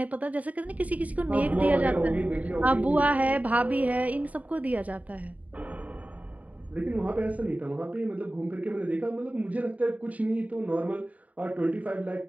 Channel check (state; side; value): late; left; 0.071 ms